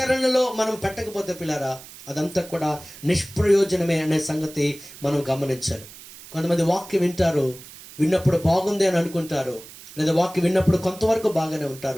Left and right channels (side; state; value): right; noise; hiss, 17 dB below the sound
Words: మనం పెట్టకపోతే పిల్లరా, అదంతా కూడా నిష్ప్రయోజనమే అనే సంగతి మనం గమనించాలి. కొంతమంది వాక్యం వింటారు, విన్నప్పుడు బాగుంది అని అనుకుంటారు, లేదా వాక్యం విన్నప్పుడు కొంతవరకు బాగానే